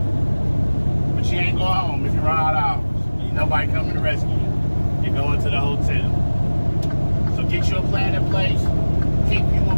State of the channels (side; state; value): both; inverted; correlation -1.00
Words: But you ain't going home if you run out of hours. Ain't nobody coming to rescue you. You're going to the hotel. So get you a plan in place. Keep you a